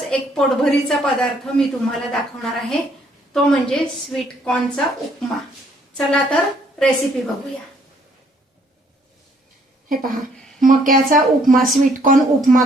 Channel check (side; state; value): both; normal; correlation 0.66